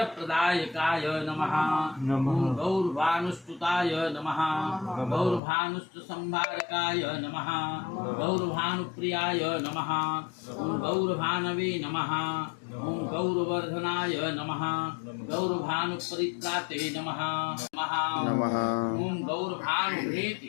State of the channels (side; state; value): right; drops out; at 5.4 s